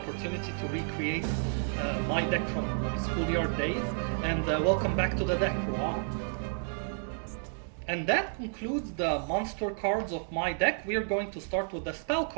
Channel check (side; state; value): left; silent; digital silence